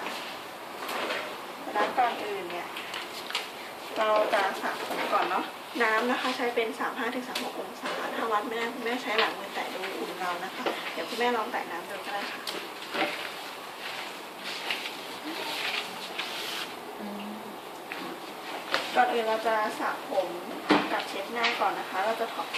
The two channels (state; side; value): identical; both; correlation 1.00